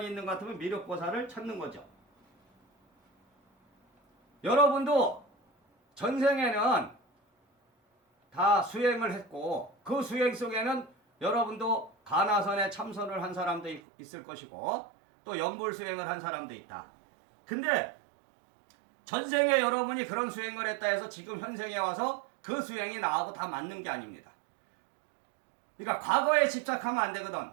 있는 것 같으면 미륵보살을 찾는 거죠. 여러분도 전생에는 다 수행을 했고 그 수행 속에는 여러분도 가나선에 참선을 한 사람도 있을 것이고 또 연불수행을 한 사람도 있다. 근데 전생에 여러분이 그런 수행을 했다 해서 지금 현생에 와서 그 수행이 나하고 다 맞는 게 아닙니다. 그러니까 과거에 집착하면 안 되거든.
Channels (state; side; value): drops out; left; at 13.8 s